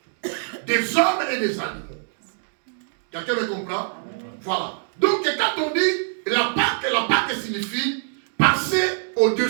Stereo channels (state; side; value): silent; left; digital silence